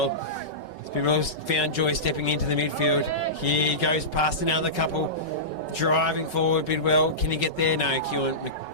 Bidwell's found joy stepping into the midfield. Here he goes past another couple, driving forward. Bidwell, can he get there? No,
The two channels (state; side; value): late; right; 5.3 ms